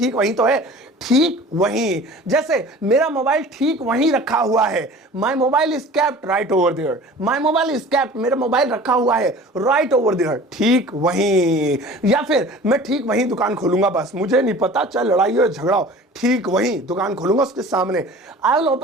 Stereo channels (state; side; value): normal; both; correlation 0.43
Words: वहीं तो है, ठीक वहीं। जैसे मेरा मोबाइल ठीक वहीं रखा हुआ है, my mobile is kept right over there. My mobile is kept, मेरा मोबाइल रखा हुआ है राइट ओवर देयर, ठीक वहीं। या फिर मैं ठीक वहीं दुकान खोलूंगा, बस मुझे नहीं पता, चाहे लड़ाई हो झगड़ा हो, ठीक वहीं दुकान खोलूंगा उसके सामने। I will